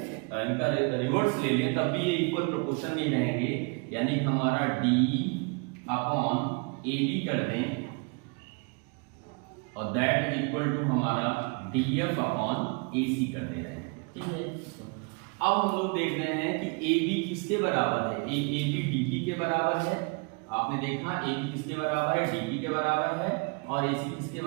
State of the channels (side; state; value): left; quieter; 32.7 dB